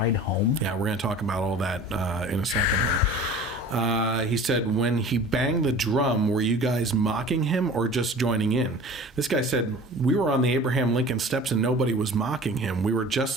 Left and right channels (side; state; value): both; normal; correlation 0.41